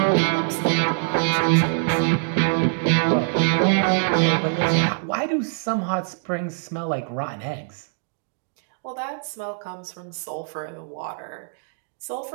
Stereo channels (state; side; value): silent; left; digital silence